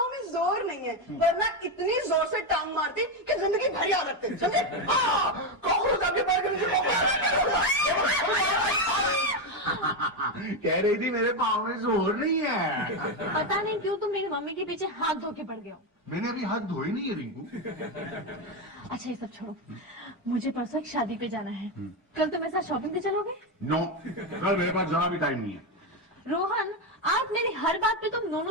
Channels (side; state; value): both; normal; correlation 0.09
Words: में जोर नहीं है, वरना इतनी जोर से टांग मारती कि जिंदगी भर याद रखते, समझे? कॉकरोच आपके पैर के नीचे कह रही थी मेरे पाँव में जोर नहीं है। पता नहीं क्यों तुम मेरी मम्मी के पीछे हाथ धो के पड़ गए हो। मैंने अभी हाथ धोए नहीं है रिंकू। अच्छा ये सब छोड़ो, मुझे परसों एक शादी पे जाना है, कल तुम मेरे साथ शॉपिंग पे चलोगे? नो, कल मेरे पास जरा भी टाइम नहीं है। रोहन, आप मेरी हर बात पे तुम